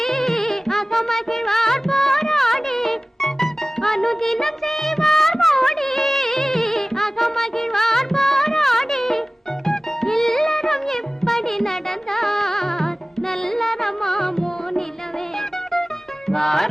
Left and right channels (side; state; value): both; normal; correlation 0.97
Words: அகமகிழ்வார் போராடி. அனுதினம் செய்வார் மோடி, அகமகிழ்வார் போராடி. இல்லறம் எப்படி நடந்தார் நல்லறமாமோ நிலவே.